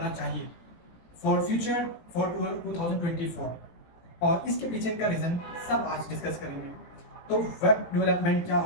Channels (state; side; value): late; right; 18 ms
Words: चाहिए फॉर फ्यूचर फॉर 2024 और इसके पीछे का रीज़न सब आज डिस्कस करेंगे। तो वेब डेवलपमेंट क्या